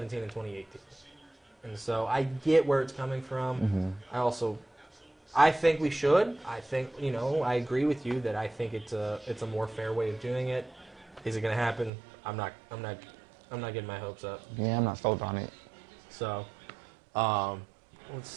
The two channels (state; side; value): drops out; left; at 11.9 s